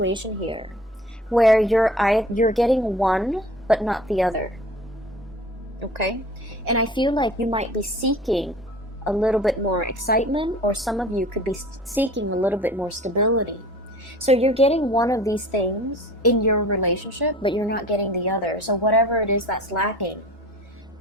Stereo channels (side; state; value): both; normal; correlation 0.43